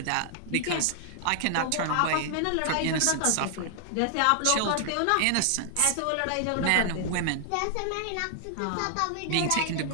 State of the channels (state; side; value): different; both; correlation 0.00